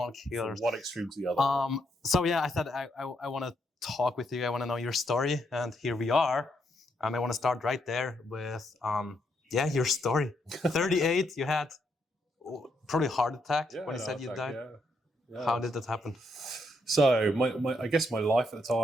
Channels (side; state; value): both; normal; correlation 0.77